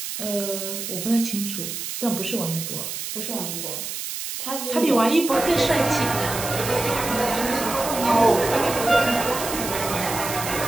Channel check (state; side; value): noise; right; hiss, 6 dB below the sound